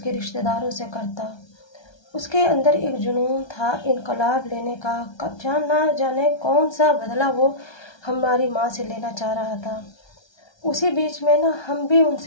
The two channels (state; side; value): late; right; 1.3 ms